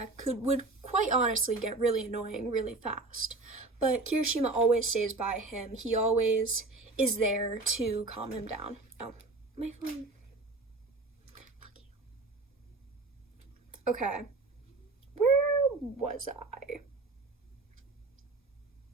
would quite honestly get really annoying really fast. But Kirishima always stays by him. He always is there to calm him down. Oh, my phone. Fuck you. Okay. Where was I?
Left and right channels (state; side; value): quieter; left; 3.4 dB